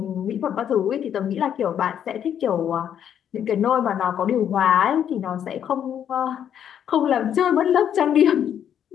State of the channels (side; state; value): right; quieter; 9.3 dB